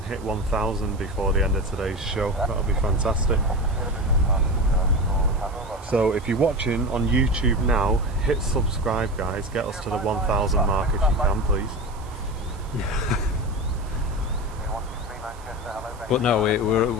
hit 1,000 before the end of today's show. That'll be fantastic. So if you're watching on YouTube now, hit subscribe guys. Get us to the 1,000 mark if you can, please. But no,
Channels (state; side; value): noise; right; hiss, 24 dB below the sound